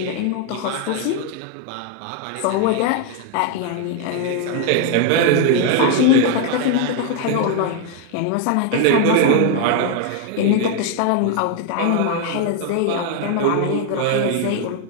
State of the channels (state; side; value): different; both; correlation 0.01